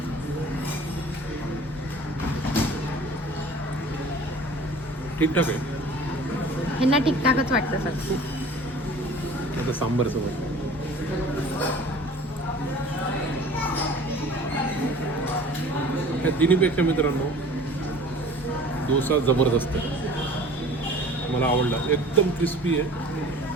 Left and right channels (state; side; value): normal; both; correlation 0.45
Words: ठीकठाक आहे. ह्यांना ठीकठाकच वाटतं सर. आता सांबार सोबत ह्या तिन्हीपेक्षा मित्रांनो डोसा जबरदस्त आहे. मला आवडला, एकदम क्रिस्पी आहे,